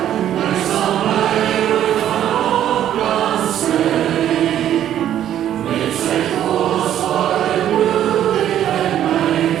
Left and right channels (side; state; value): left; quieter; 11.1 dB